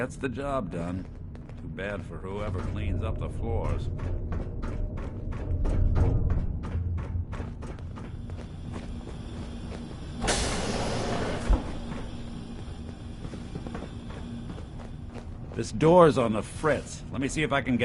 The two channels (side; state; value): both; identical; correlation 1.00